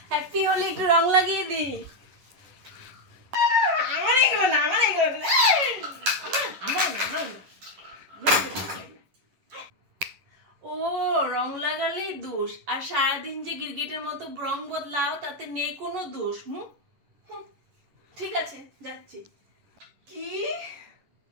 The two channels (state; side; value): late; left; 11 ms